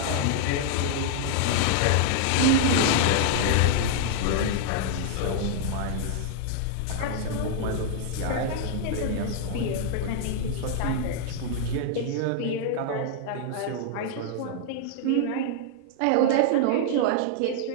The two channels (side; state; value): both; different; correlation 0.00